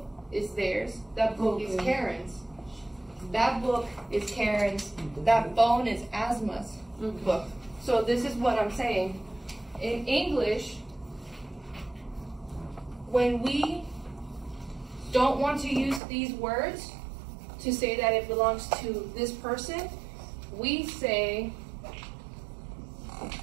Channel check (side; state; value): left; drops out; at 16.0 s